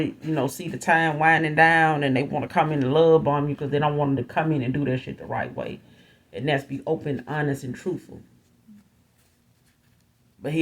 see the time winding down and they want to come in and love bomb you because they don't want them to come in and do that shit the right way. And that's be open, honest, and truthful. But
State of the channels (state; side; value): identical; both; correlation 1.00